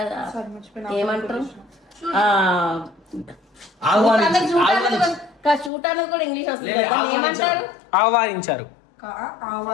ఏమంటారు చూడటానికి కూడా ఇంగ్లీష్ వస్తుంది కదా, ఏమంటారు? ఆహ్వానించారు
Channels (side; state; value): right; drops out; at 5.7 s